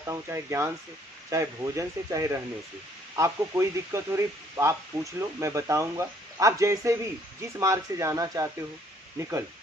हूँ, चाहे ज्ञान से, चाहे भोजन से, चाहे रहने से। आपको कोई दिक्कत हो रही आप पूछ लो, मैं बताऊंगा। आप जैसे भी जिस मार्ग से जाना चाहते हो निकल,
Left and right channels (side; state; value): both; normal; correlation 0.63